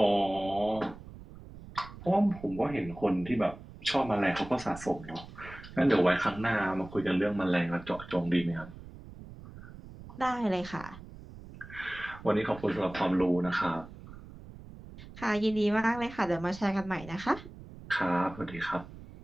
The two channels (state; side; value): noise; right; rumble, 16 dB below the sound